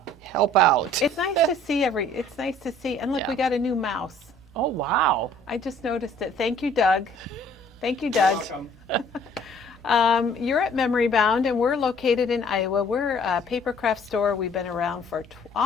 help out. It's nice to see It's nice to see. And look, we got a new mouse. Oh, wow. I just noticed it. Thank you, Doug. Thank you, Doug. You're welcome. You're at Memory Bound, and we're located in Iowa. We're a paper craft store. We've been around for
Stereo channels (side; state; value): both; normal; correlation 0.56